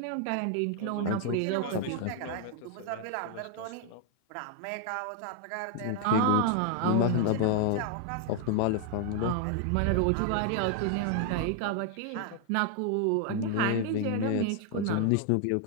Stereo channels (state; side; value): different; both; correlation 0.00